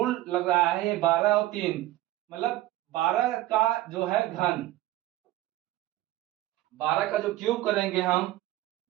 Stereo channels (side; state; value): left; quieter; 15.8 dB